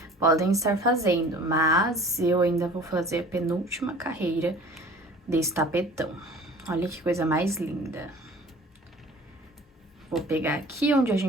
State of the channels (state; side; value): normal; both; correlation 0.46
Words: podem estar fazendo, mas eu ainda vou fazer a penúltima carreira desse tapetão. Olha que coisa mais linda. Vou pegar aqui onde a